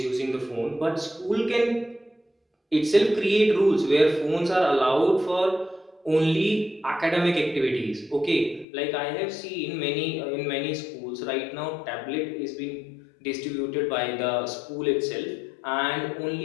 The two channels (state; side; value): drops out; right; at 8.7 s